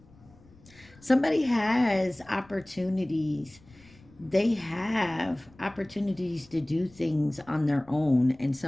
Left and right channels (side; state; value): left; noise; rumble, 26 dB below the sound